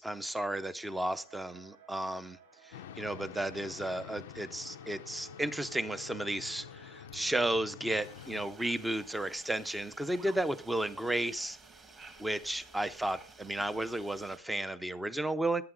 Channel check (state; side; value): normal; both; correlation 0.89